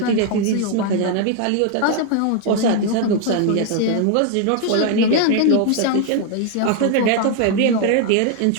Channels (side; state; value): both; different; correlation 0.00